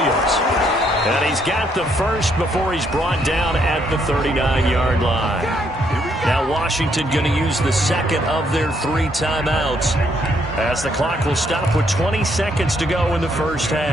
And he's got the first before he's brought down at the 39-yard line. Now Washington going to use the 2nd of their 3 timeouts as the clock will stop with 20 seconds to go in the first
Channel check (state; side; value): normal; both; correlation 0.72